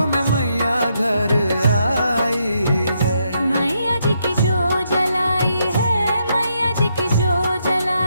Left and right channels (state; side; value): inverted; both; correlation -0.78